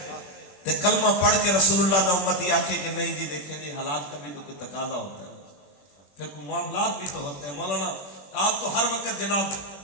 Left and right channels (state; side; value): late; right; 21 ms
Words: تے کلمہ پڑھ کے رسول اللہ دا امتی آکھے کہ نہیں جی دیکھیں جی حالات کا بھی تو کوئی تقاضا ہوتا ہے پھر کوئی معاملات بھی تو ہوتے ہیں مولانا آپ تو ہر وقت جناب